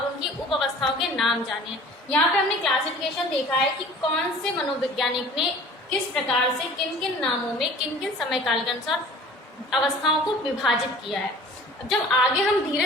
उनकी उप अवस्थाओं के नाम जाने हैं। यहाँ पे हमने क्लासिफिकेशन देखा है कि कौन से मनोवैज्ञानिक ने किस प्रकार से किन किन नामों में किन किन समय काल के अनुसार अवस्थाओं को विभाजित किया है। जब आगे हम धीरे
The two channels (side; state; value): both; normal; correlation 0.46